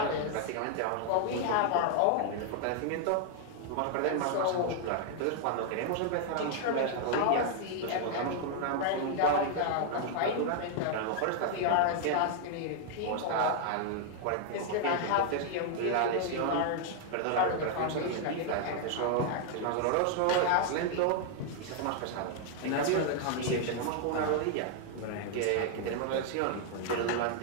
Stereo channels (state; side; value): different; both; correlation 0.00